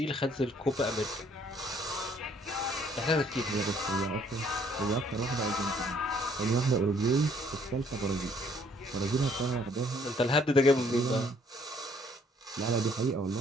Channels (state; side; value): normal; both; correlation 0.63